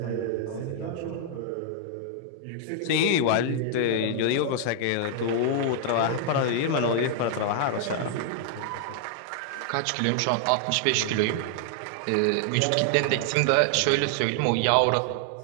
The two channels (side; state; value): both; different; correlation -0.01